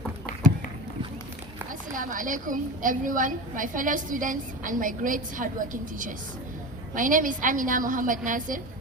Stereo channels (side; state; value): both; normal; correlation 0.28